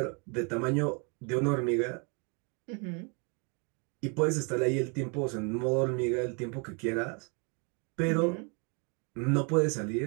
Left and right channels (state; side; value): quieter; left; 34.8 dB